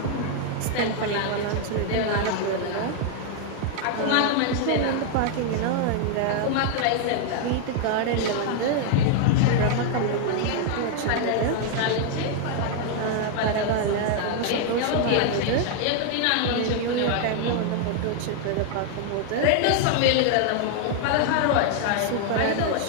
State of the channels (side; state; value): both; different; correlation 0.00